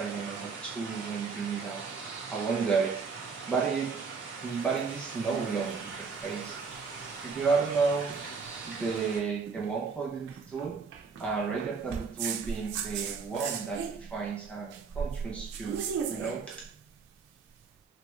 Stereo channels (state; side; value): quieter; left; 5.2 dB